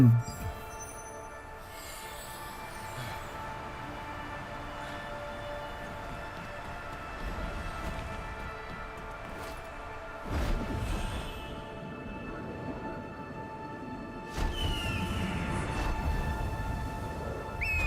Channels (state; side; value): identical; both; correlation 1.00